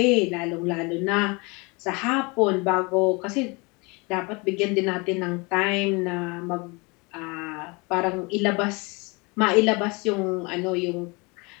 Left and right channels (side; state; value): right; quieter; 28.0 dB